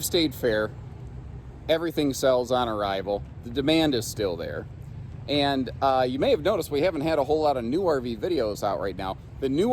stayed fair. Everything sells on arrival. The demand is still there. And you may have noticed we haven't had a whole lot of new RV videos out right now. The new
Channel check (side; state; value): both; identical; correlation 1.00